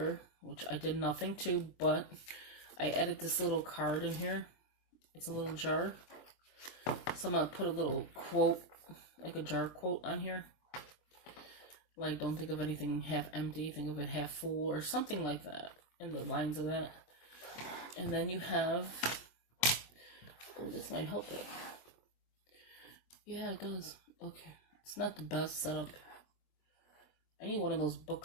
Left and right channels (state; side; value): late; right; 23 ms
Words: which I did nothing to, but I added this little card in here. It's a little jar. So I'm going to put a little quote, like a jar quote on here. Like, don't think of anything half empty, think of it half full, or something like that, in the lines of that. And then you have, oh, this might help it. Yeah, it does. Okay. It's not the best setup. I need one of those book